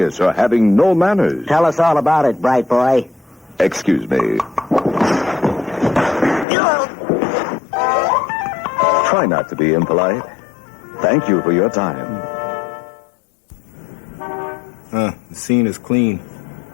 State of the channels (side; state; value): right; drops out; at 6.5 s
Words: or having no manners. Tell us all about it, bright boy. Excuse me. Try not to be impolite. Thank you for your time. The scene is clean.